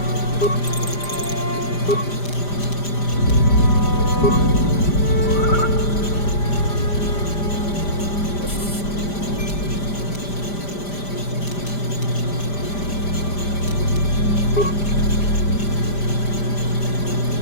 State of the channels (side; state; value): right; late; 5.0 ms